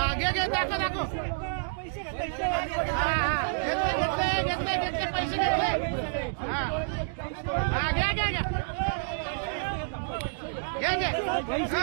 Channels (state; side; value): silent; left; digital silence